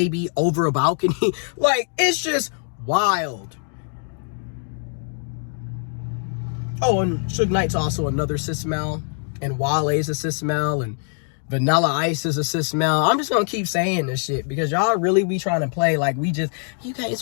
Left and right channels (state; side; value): silent; right; 57 dB below the other